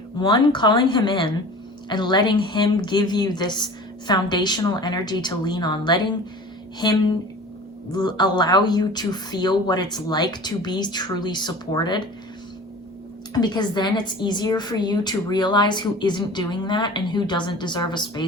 one, calling him in and letting him give you this foundational energy to lean on, letting him allow you to feel what it's like to be truly supported, because then it's easier for you to realize who isn't doing that and who doesn't deserve a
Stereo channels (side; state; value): both; normal; correlation 0.40